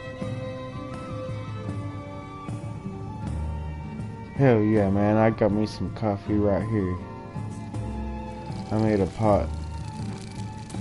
Hell yeah, man, I got me some coffee right here. I made a pot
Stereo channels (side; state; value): both; identical; correlation 1.00